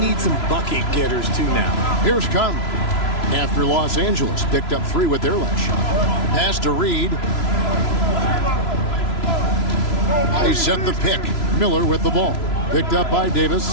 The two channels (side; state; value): right; late; 3.0 ms